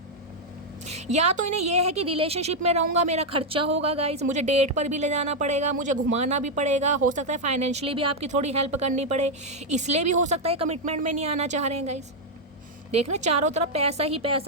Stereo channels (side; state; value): both; normal; correlation 0.00